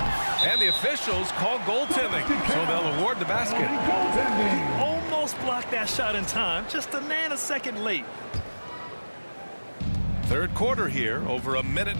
And the officials call goaltending, so they'll award the basket. He almost blocked that shot in time, just a nanosecond late. Third quarter here, over a minute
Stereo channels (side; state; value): both; inverted; correlation -1.00